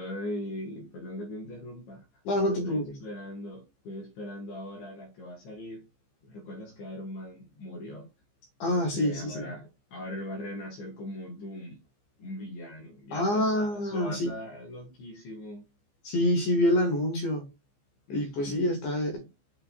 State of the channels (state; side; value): late; right; 15 ms